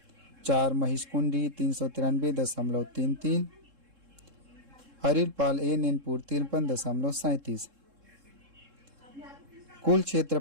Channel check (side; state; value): left; late; 3.7 ms